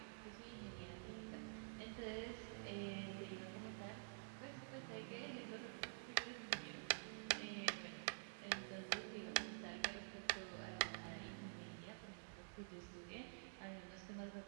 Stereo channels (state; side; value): silent; left; digital silence